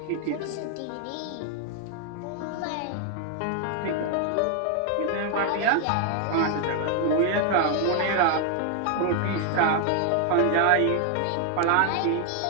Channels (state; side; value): different; both; correlation 0.00